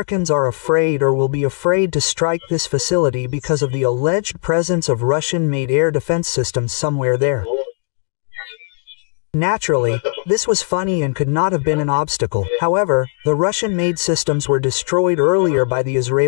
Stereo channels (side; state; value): right; silent; 67 dB below the other